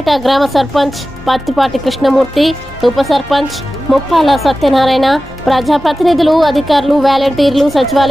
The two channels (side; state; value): both; normal; correlation 0.95